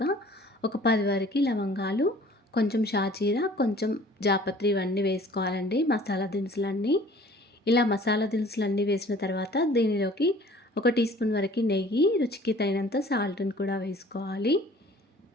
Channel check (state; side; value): normal; both; correlation 0.51